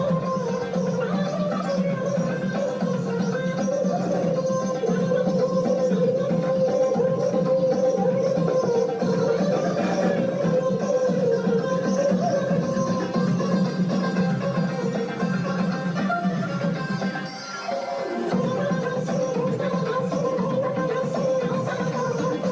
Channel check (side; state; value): both; identical; correlation 1.00